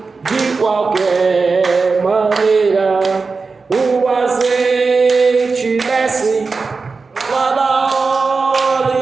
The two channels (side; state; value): left; quieter; 4.4 dB